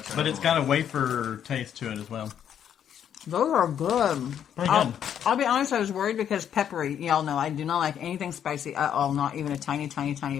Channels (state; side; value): quieter; right; 9.2 dB